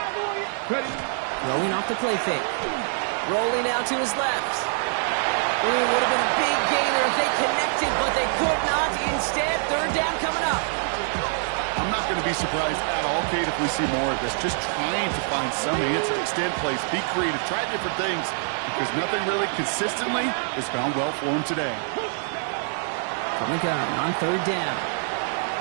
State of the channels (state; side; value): silent; left; 62 dB below the other